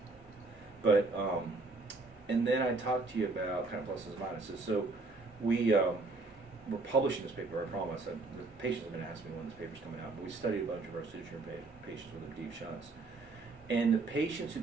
and then I talked to you about kind of pluses and minuses. So we're publishing this paper. I promise. The patients have been asking me when this paper's coming out, but we studied a bunch of our pseudotumor patients with the deep shunts, and the patients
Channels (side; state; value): left; quieter; 3.5 dB